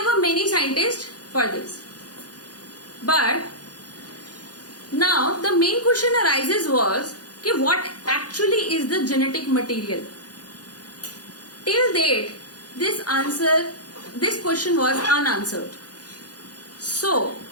were many scientists for this. But now the main question arises was कि what actually is the genetic material? Till date, this question was unanswered. So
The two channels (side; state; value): right; late; 0.69 ms